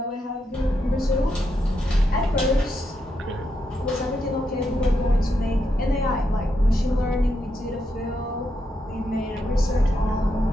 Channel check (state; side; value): normal; both; correlation 0.82